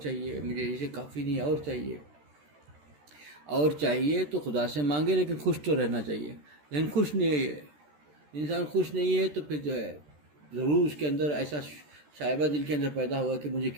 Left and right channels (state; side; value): late; left; 13 ms